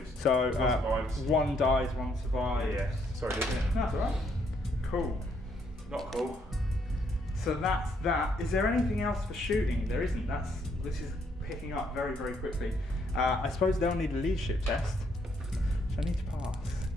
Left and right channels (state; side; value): normal; both; correlation 0.71